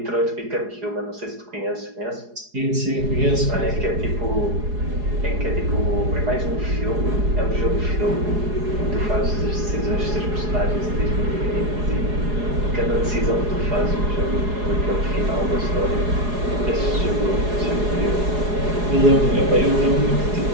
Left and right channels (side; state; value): left; late; 4.8 ms